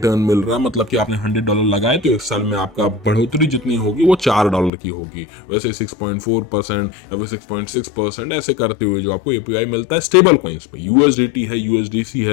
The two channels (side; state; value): right; drops out; at 4.7 s